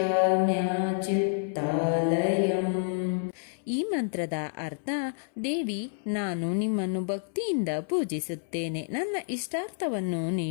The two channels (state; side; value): silent; right; 59 dB below the other